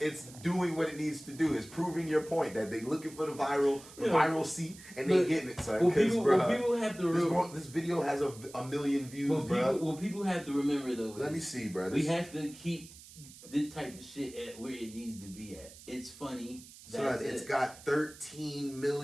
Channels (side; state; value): right; noise; hiss, 19 dB below the sound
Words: doing what it needs to do. It's proving your point that they looking for the viral seat and they getting it, son. Because people have to this video has a million views, bro. What people have to remember though. Let me see, bro. We have to keep this type of shit at where it needs to be at. It's funny. Son, it's got